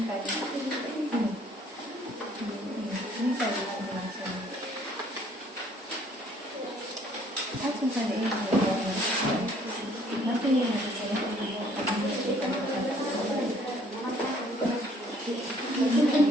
tadi. Ini tadi langsung. Langsung saja ini. Nanti yang harus saya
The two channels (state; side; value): normal; both; correlation 0.60